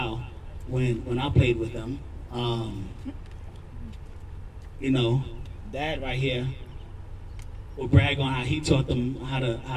when I played with them. Dad right here will brag on how he taught them how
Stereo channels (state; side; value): identical; both; correlation 1.00